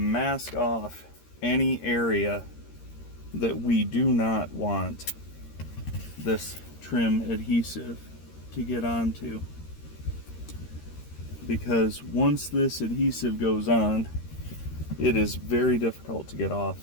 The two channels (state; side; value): late; right; 13 ms